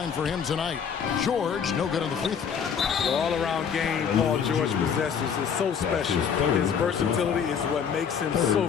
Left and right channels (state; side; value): quieter; right; 7.2 dB